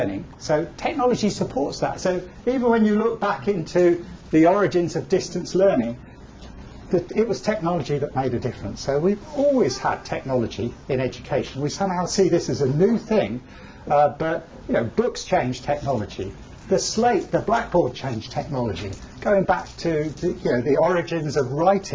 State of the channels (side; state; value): both; identical; correlation 1.00